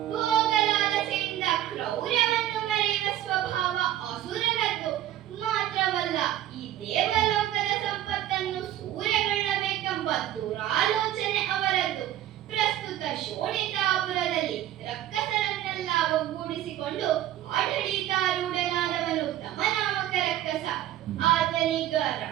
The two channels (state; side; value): quieter; left; 12.6 dB